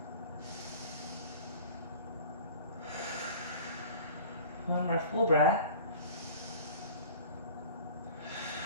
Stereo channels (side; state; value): both; inverted; correlation -0.43